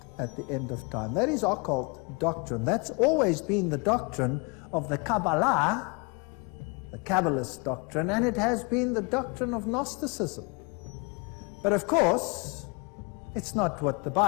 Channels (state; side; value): quieter; right; 31.6 dB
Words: at the end of time. That is occult doctrine. That's always been the doctrine of the Kabbalah, the Kabbalist doctrine, and it has been the doctrine of Gnosticism. But of course, it's not what the